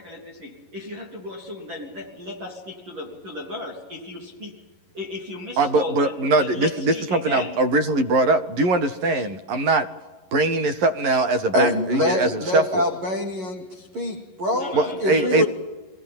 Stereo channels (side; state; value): left; late; 11 ms